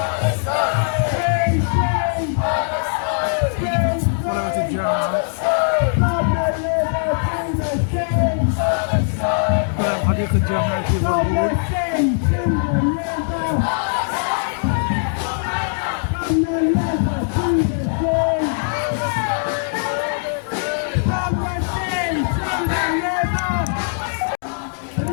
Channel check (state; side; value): silent; right; digital silence